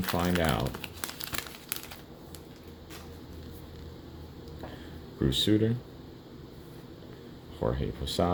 out. Bruce Sutter, Jorge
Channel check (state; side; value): identical; both; correlation 1.00